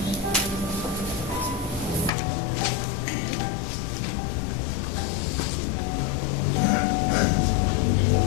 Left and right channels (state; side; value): drops out; right; at 2.1 s